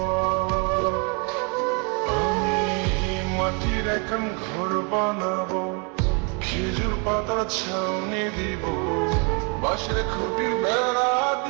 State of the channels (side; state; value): left; quieter; 34.7 dB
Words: আমি মাটির এখন ঘর বানাবো, খেজুর পাতার ছাউনি দিব, বাঁশের খুঁটির বেড়া